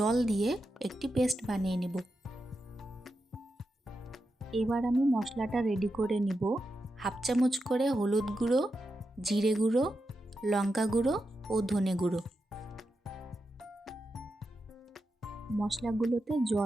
দিয়ে একটি পেস্ট বানিয়ে নেব। এবার আমি মশলাটা রেডি করে নিব। 1/2 চামচ করে হলুদ গুঁড়ো, জিরে গুঁড়ো, লঙ্কা গুঁড়ো ও ধনে গুঁড়ো। মশলাগুলোতে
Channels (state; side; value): normal; both; correlation 0.88